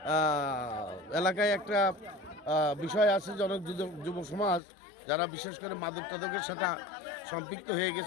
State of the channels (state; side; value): drops out; right; at 4.6 s